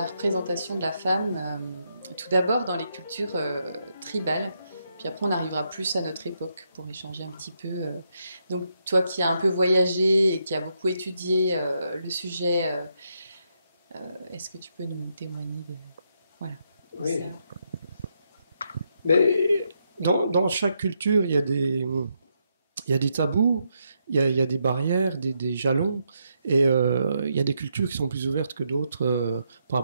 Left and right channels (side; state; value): both; inverted; correlation -0.79